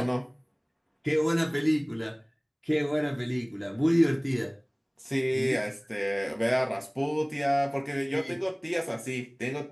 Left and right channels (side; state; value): both; identical; correlation 1.00